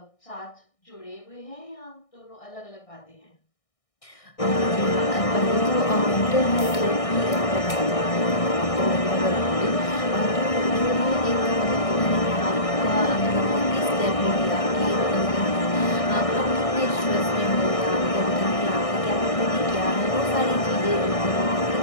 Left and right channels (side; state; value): right; late; 1.6 ms